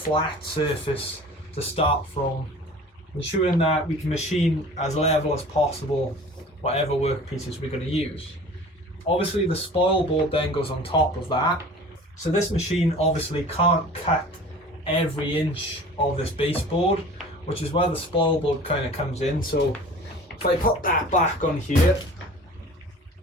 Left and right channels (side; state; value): both; normal; correlation 0.43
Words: surface to start from, ensuring that we can machine as level as possible whatever workpieces we're going to use. Obviously the spoilboard then goes on top of that. So this machine obviously can't cut every inch of this baseboard, which is where the spoilboard kind of comes in. So if I put that back on here,